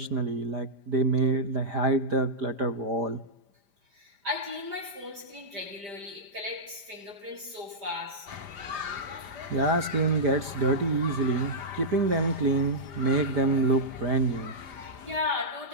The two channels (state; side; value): late; left; 5.0 ms